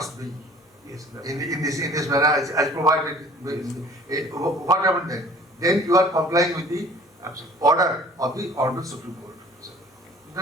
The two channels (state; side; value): normal; both; correlation 0.50